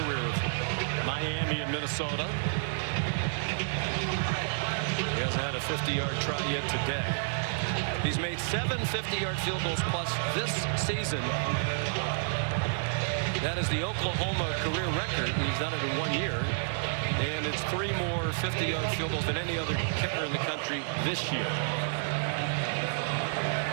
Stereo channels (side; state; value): left; silent; digital silence